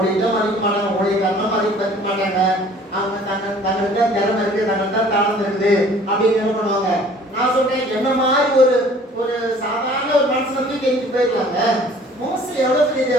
மதிக்க மாட்டாங்க, ஊழியக்காரனும் மதிக்க மாட்டாங்க. அவங்க தங்களுக்கு திறமை இருக்கு, தங்களுக்கு தாளம் இருக்குது அப்படின்னு என்ன பண்ணுவாங்க. நான் சொல்றேன், என்ன மாதிரி ஒரு சாதாரண ஒரு மனுஷனை தூக்கி எரிஞ்சு போயிருக்காங்க. மோஸ்ட்லி எவ்வளவு பெரிய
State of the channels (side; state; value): both; normal; correlation 0.52